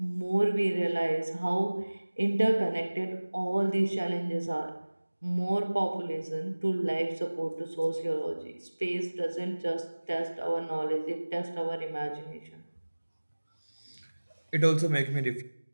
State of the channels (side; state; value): both; inverted; correlation -1.00